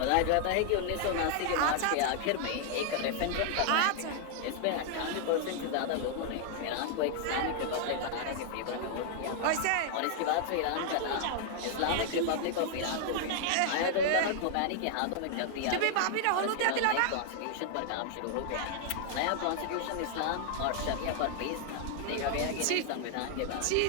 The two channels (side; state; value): both; different; correlation 0.00